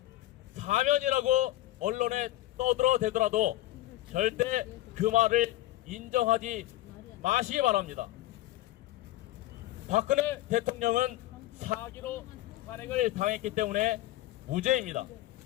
사면이라고 언론에 떠들어대더라도 절대 그 말을 인정하지 마시기 바랍니다. 박근혜 대통령은 사기로 탄핵을 당했기 때문에 무죄입니다.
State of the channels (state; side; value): quieter; right; 16.0 dB